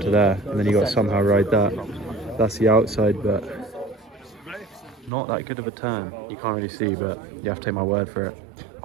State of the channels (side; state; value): left; drops out; at 5.1 s